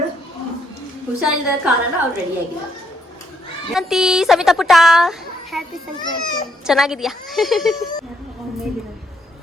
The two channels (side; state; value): both; normal; correlation 0.73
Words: ಹುಷಾರಿಲ್ಲದ ಕಾರಣ ಅವ್ರು ರೆಡಿ ಆಗಿಲ್ಲ. ಅಂತಿ ಸವಿತಾ ಪುಟ್ಟ ಹ್ಯಾಪಿ ಸಂಕ್ರಾಂತಿ. ಚೆನ್ನಾಗಿದ್ಯಾ?